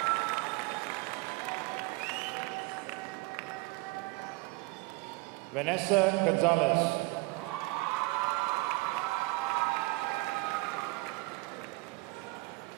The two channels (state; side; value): quieter; left; 24.1 dB